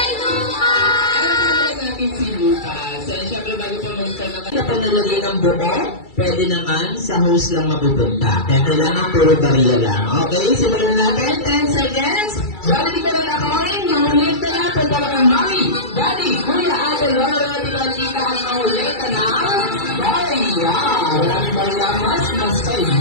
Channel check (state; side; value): late; right; 2.3 ms